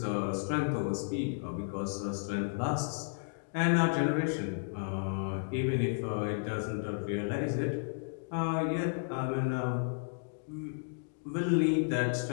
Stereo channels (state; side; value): silent; right; digital silence